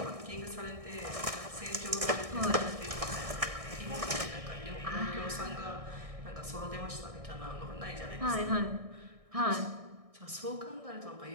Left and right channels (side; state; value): left; late; 1.6 ms